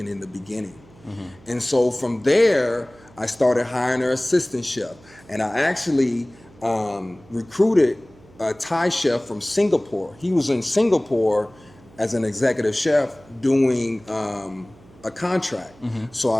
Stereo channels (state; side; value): noise; right; hum, 26 dB below the sound